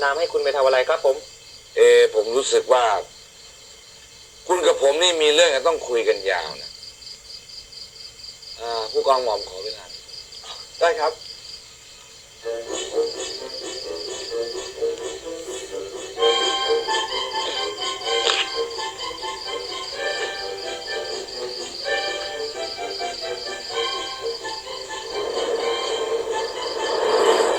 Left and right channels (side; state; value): both; identical; correlation 1.00